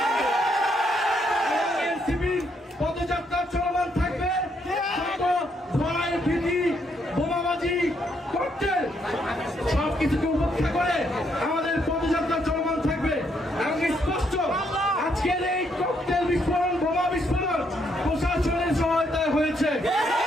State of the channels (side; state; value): both; normal; correlation 0.74